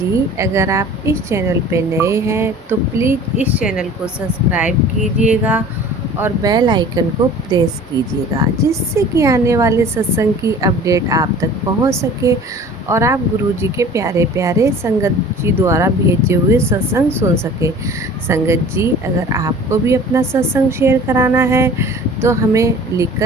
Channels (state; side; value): normal; both; correlation 0.44